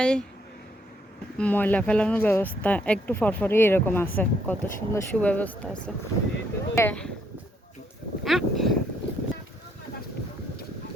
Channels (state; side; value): normal; both; correlation 0.71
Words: ময়লা ফেলানোর ব্যবস্থা একটু ফরফরি এরকম আছে, কত সুন্দর সুব্যবস্থা আছে।